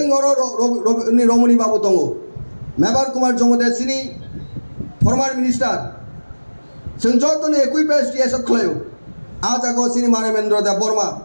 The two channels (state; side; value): inverted; both; correlation -1.00